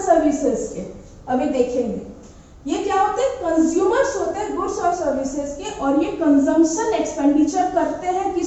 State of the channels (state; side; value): identical; both; correlation 1.00